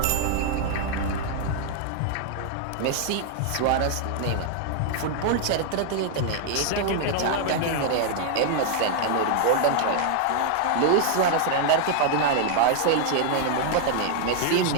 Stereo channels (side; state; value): both; different; correlation -0.01